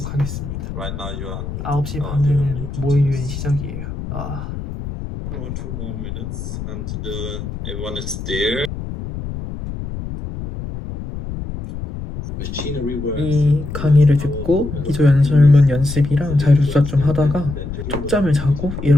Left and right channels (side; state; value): left; noise; rumble, 8 dB below the sound